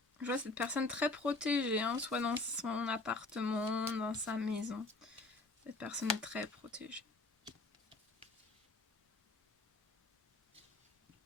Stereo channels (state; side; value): quieter; right; 3.1 dB